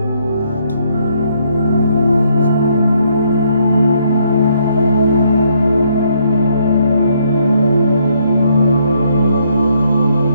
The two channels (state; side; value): inverted; both; correlation -0.70